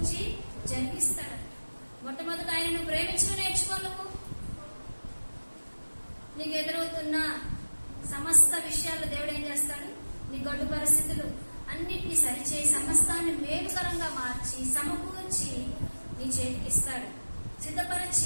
జరిగిస్తాడంట. మొట్టమొదట ఆయన నువ్వు ప్రేమించడం నేర్చుకో. నువ్వు నీకు ఎదురవుతున్న సమస్త విషయాలు దేవుడు ఏం చేస్తాడు, నీ గడ్డు పరిస్థితులు అన్నిటినీ సరిచేయి సమస్తాన్ని మేలుకరంగా మార్చి సమకూర్చి నీ చేతికి ఇస్తాడు,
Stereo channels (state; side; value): inverted; both; correlation -1.00